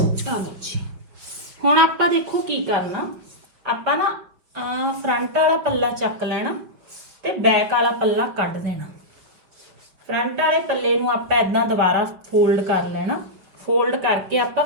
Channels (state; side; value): late; left; 5.6 ms